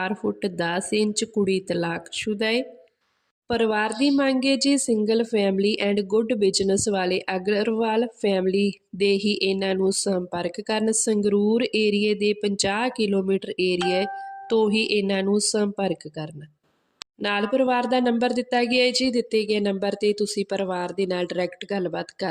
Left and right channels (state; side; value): identical; both; correlation 1.00